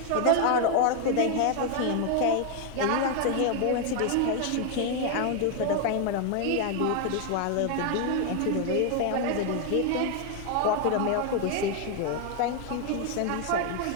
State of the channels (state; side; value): different; both; correlation 0.01